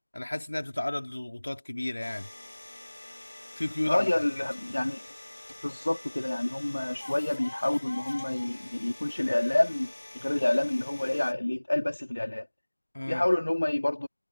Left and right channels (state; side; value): inverted; both; correlation -1.00